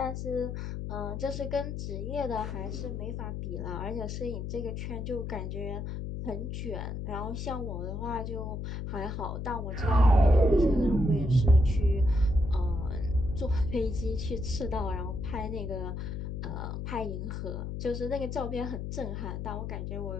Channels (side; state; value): left; noise; hum, 5 dB below the sound